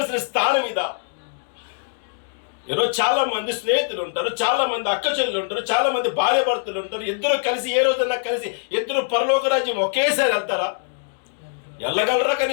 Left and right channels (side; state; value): right; silent; digital silence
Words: స్థానం ఇదా? ఈరోజు చాలా మంది స్నేహితులు ఉంటారు, చాలా మంది అక్క చెల్లెలు ఉంటారు, చాలా మంది భార్య భర్తలు ఉంటారు. ఇద్దరు కలిసి ఏ రోజన్నా కలిసి ఇద్దరు పరలోక రాజ్యం ఒకేసారి వెళ్తారా? వెళ్ళగలరా?